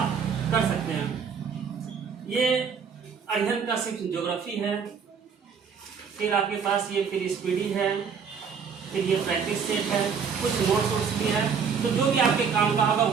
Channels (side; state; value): left; quieter; 6.4 dB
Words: कर सकते हैं। ये अध्ययन का सिर्फ ज्योग्राफी है, फिर आपके पास ये फिर स्पीडी है, फिर ये प्रैक्टिस सेट है, कुछ नोट्स भी है। तो जो भी आपके काम का होगा